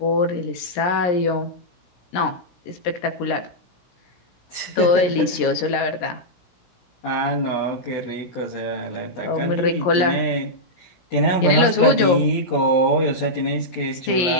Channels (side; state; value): right; late; 17 ms